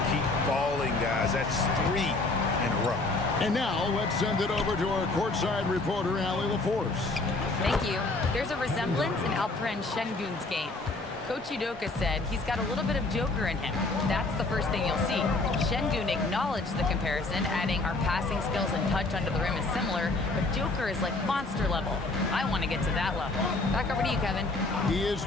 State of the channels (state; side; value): quieter; right; 3.2 dB